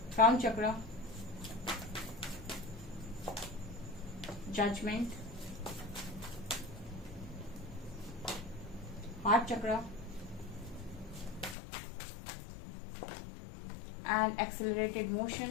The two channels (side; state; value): right; drops out; at 11.6 s